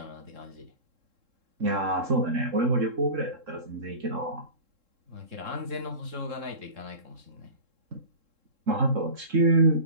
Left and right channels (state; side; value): late; left; 3.7 ms